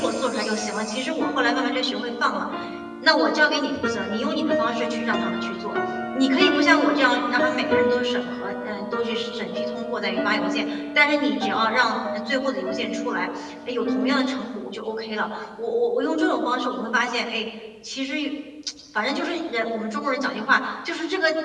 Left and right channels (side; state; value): both; identical; correlation 1.00